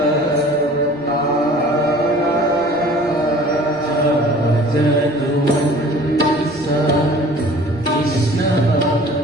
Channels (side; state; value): left; noise; rumble, 29 dB below the sound